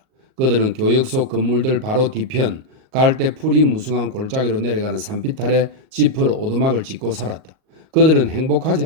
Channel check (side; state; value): left; late; 38 ms